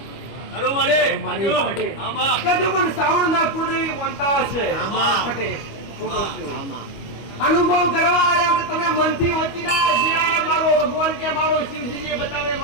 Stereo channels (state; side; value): late; right; 25 ms